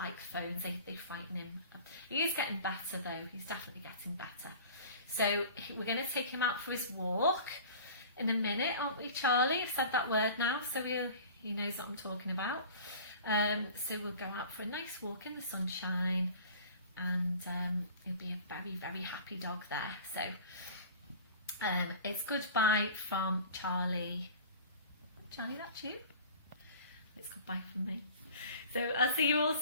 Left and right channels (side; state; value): both; inverted; correlation -0.42